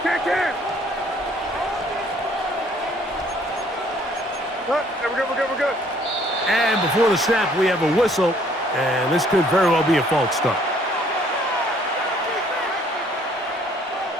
Can. We're good. And before the snap, we have a whistle, and this could very well be a false start.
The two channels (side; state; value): both; normal; correlation 0.61